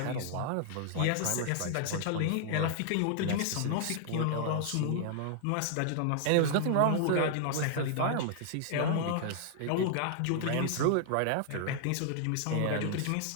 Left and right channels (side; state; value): both; different; correlation 0.00